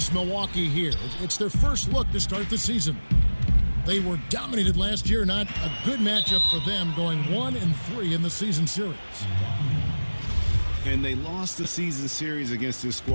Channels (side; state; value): both; inverted; correlation -1.00